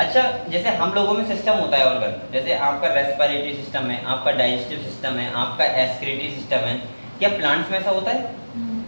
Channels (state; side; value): inverted; both; correlation -1.00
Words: जैसे हम लोगों में सिस्टम होता है ऑर्गन, जैसे आपका रेस्पिरेटरी सिस्टम है, आपका डाइजेस्टिव सिस्टम है, आपका एक्सक्रीटरी सिस्टम है, क्या प्लांट्स में ऐसा होता है?